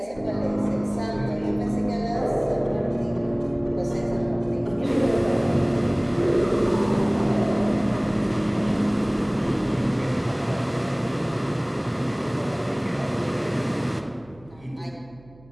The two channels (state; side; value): noise; right; hum, 25 dB below the sound